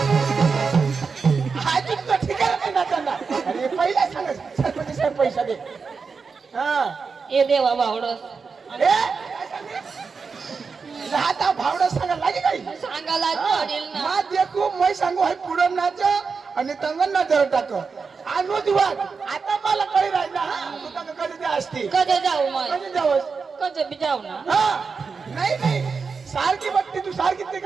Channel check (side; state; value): left; quieter; 5.1 dB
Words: अरे पहिला सांगा सरपंच साहेब पैसा दे हा ए देवा बावडस आता भावडा सांगा लागे काही सांगायला पडेल ना मा देखू मै सांगू हाय पुढं नाच आणि तंगन ना जर टाक आणू दिवात आता मला कळी राहिला हा तू तंग कधी ते असते कधी जाऊ मग कधी जावस कधी बी जाऊ ना हा नाही सारखी बघते तू सारखी ते